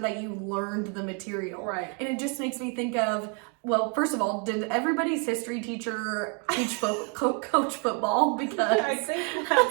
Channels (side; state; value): left; quieter; 37.4 dB